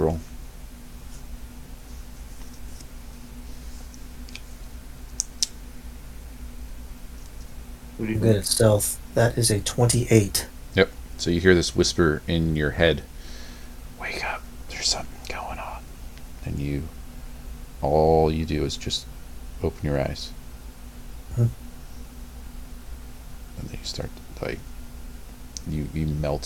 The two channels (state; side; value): identical; both; correlation 1.00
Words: I'm good at stealth. That is a 28. Yep. So you hear this whisper in your head. Wake up. There's something going on. And all you do is just open your eyes. And then you start to, you